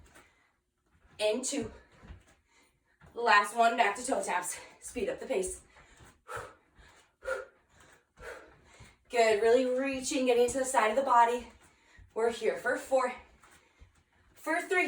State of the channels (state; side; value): identical; both; correlation 1.00